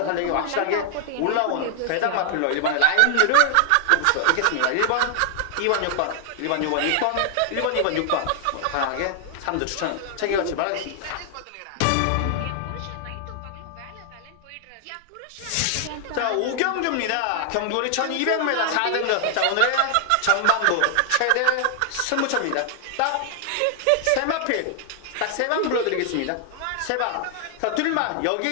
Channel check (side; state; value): both; different; correlation 0.00